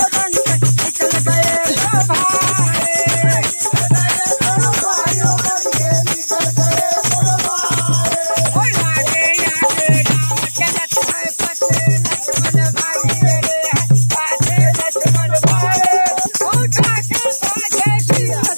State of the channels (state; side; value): inverted; both; correlation -1.00